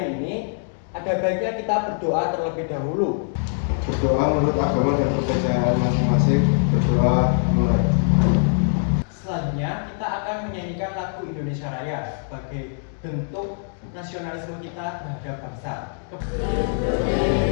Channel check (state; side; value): silent; right; digital silence